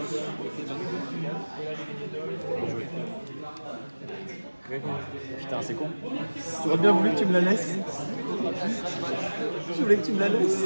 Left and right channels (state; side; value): inverted; both; correlation -1.00